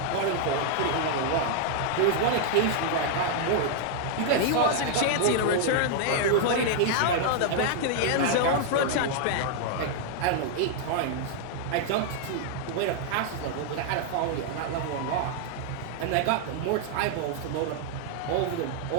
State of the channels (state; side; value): different; both; correlation 0.00